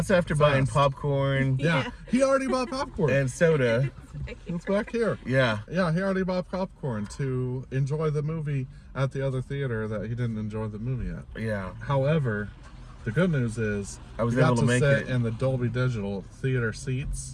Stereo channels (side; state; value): both; identical; correlation 1.00